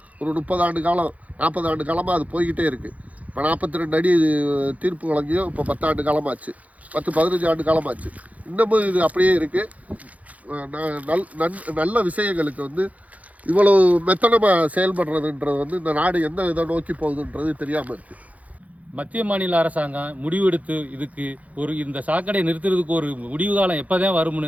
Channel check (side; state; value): left; late; 0.071 ms